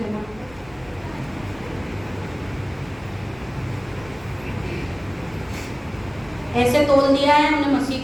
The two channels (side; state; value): left; noise; rumble, 23 dB below the sound